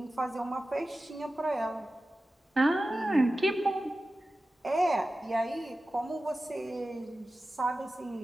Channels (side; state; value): both; normal; correlation 0.94